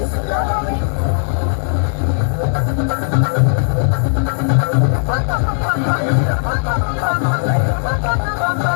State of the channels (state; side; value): silent; right; digital silence